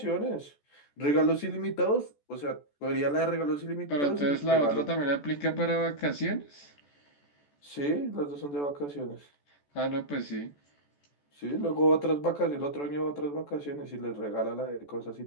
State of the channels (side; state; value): right; late; 14 ms